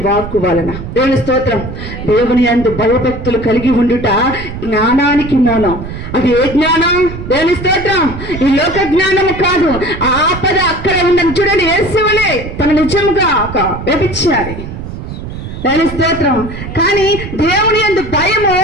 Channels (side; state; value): right; noise; rumble, 9 dB below the sound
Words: వాక్కు వలన. దేవుని స్తోత్రం. దేవుని యందు భయభక్తులు కలిగి ఉండుట జ్ఞానానికి మూలం. అది ఏ జ్ఞానం? దేవుని స్తోత్రం. ఈ లోక జ్ఞానము కాదు. ఆపద అక్కడ ఉందని చూడండి. యేసువలే తన నిజముగా ఒక వ్యభిచారి. దేవుని స్తోత్రం. కానీ దేవుని యందు భయము